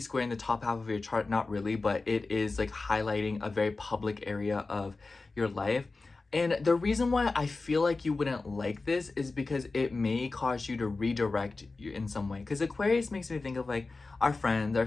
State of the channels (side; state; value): right; quieter; 3.7 dB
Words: in the top half of your chart. Not really, but it is like highlighting a very public area of your life. And the reason why I feel like you wouldn't like this is because it may cause you to redirect you in some way. Because Aquarius makes me think of like our friends, our